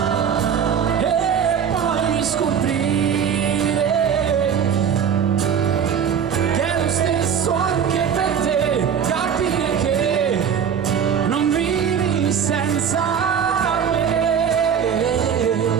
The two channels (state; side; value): quieter; left; 7.7 dB